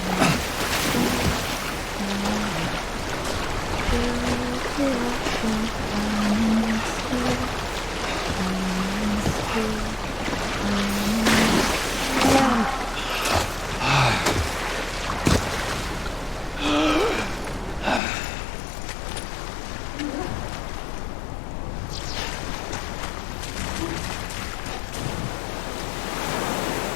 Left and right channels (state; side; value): drops out; right; at 18.0 s